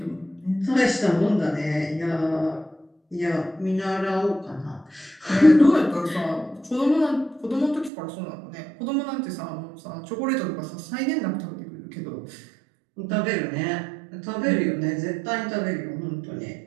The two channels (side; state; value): left; drops out; at 7.9 s